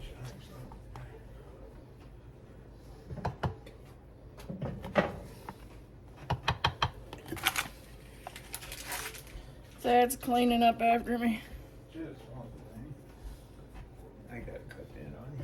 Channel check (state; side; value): identical; both; correlation 1.00